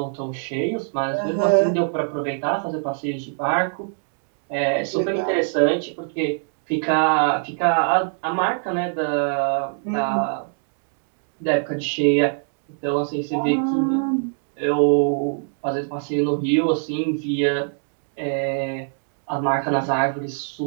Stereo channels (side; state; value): left; silent; digital silence